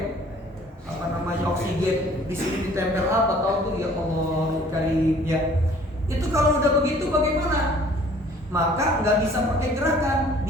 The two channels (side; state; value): both; normal; correlation 0.54